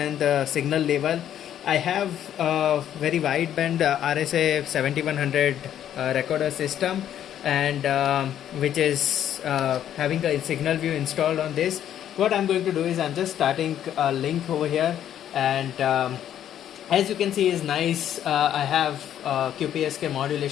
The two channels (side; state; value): right; quieter; 10.6 dB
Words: the signal level. I have a very wideband RSA 7100 recorder system, and which is having a SignalVu installed on this. What I'm going to do is I'm just starting a link over here, and as you can see is nice. I have QPSK